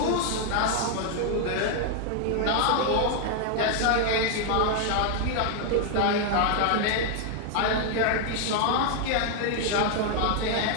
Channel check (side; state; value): both; different; correlation 0.00